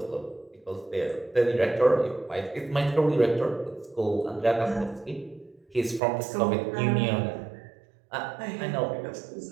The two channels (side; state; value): left; drops out; at 6.0 s